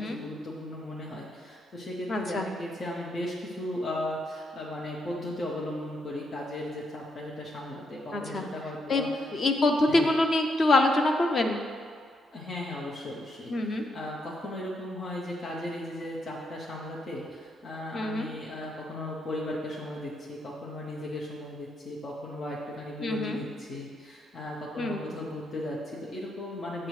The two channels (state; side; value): normal; both; correlation 0.78